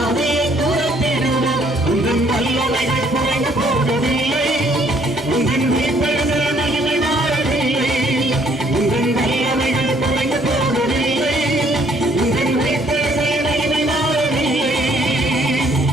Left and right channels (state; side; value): normal; both; correlation 0.64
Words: துரத்திடுவோம். உங்கள் வல்லமைகள் குறைந்து போகவில்லை, உங்கள் உயிர்த்தெழுதல் மகிமை மாறவில்லை. உங்கள் வல்லமைகள் குறைந்து போகவில்லை, உங்கள் உயிர்த்தெழுதல் மகிமை மாறவில்லை.